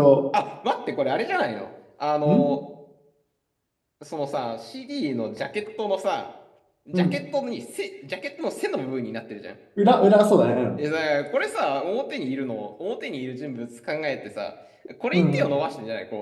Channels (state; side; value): identical; both; correlation 1.00